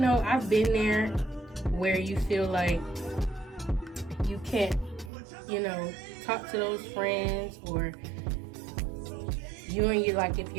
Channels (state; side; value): drops out; left; at 5.1 s